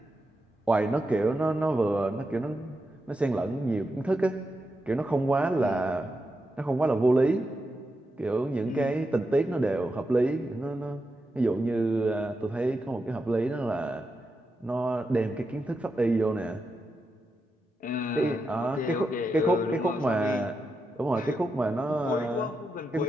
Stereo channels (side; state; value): both; normal; correlation 0.87